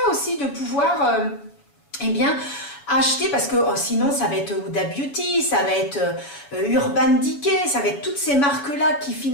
aussi de pouvoir, acheter, parce que sinon, ça va être Huda Beauty, ça va être Urban Decay, ça va être toutes ces marques-là qui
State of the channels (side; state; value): right; late; 7.0 ms